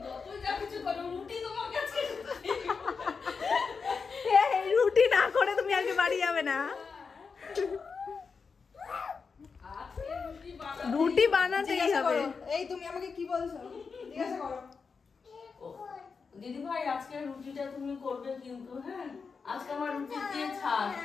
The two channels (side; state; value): right; quieter; 5.2 dB